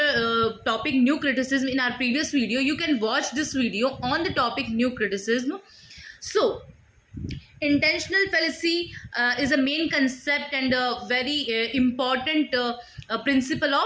topic new criticism in our previous video. You can watch this video on the topic new criticism. So, intentional fallacy is a main concept and a very important principle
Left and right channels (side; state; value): both; identical; correlation 1.00